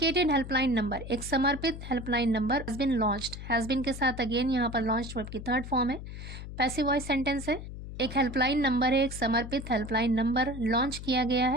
helpline number, एक समर्पित helpline number has been launched. has been के साथ अगेन यहाँ पर launched वर्ब की थर्ड फॉर्म है, पैसिव वॉइस सेंटेंस है. एक हेल्पलाइन नंबर है, एक समर्पित हेल्पलाइन नंबर लॉन्च किया गया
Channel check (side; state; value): left; noise; hum, 10 dB below the sound